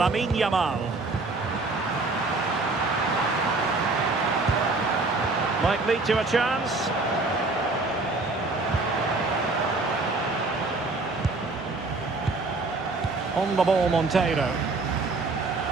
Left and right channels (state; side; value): quieter; left; 3.5 dB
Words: Yamal. Might lead to a chance. On the ball, Monteiro.